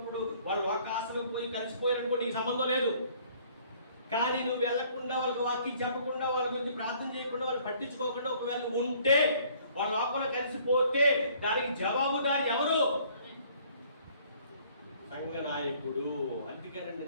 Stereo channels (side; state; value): both; inverted; correlation -0.58